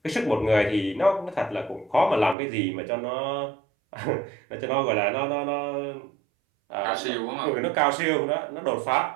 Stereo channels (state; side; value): drops out; left; at 2.4 s